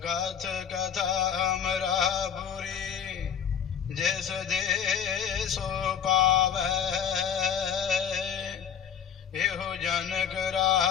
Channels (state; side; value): quieter; right; 7.8 dB